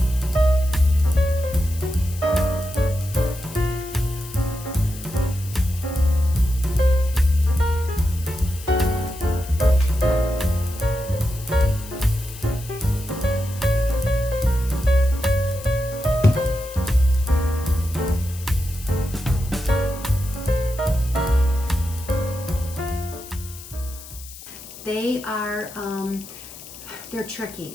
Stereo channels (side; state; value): left; noise; hiss, 16 dB below the sound